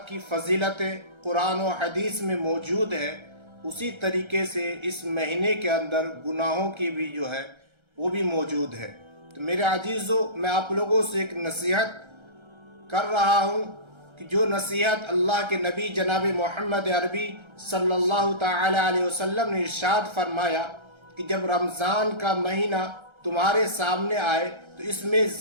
की फ़जीलतें कुरान और हदीस में मौजूद है, उसी तरीके से इस महीने के अंदर गुनाहों की भी जो है वो भी मौजूद है। तो मेरे अजीज़ों, मैं आप लोगों से एक नसीहत कर रहा हूँ कि जो नसीहत अल्लाह के नबी जनाब मोहम्मद अरबी सल्लल्लाहु ताला अलैहि वसल्लम ने इरशाद फरमाया कि जब रमज़ान का महीना तुम्हारे सामने आए तो इसमें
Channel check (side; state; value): left; late; 1.3 ms